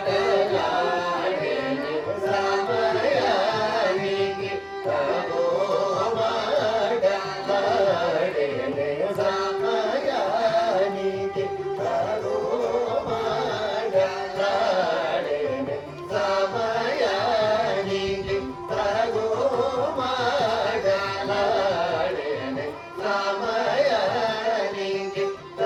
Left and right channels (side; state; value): both; identical; correlation 1.00